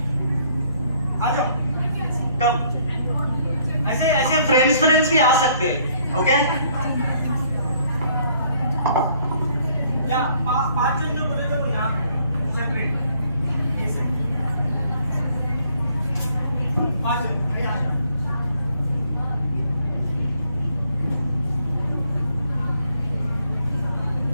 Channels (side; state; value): both; inverted; correlation -0.65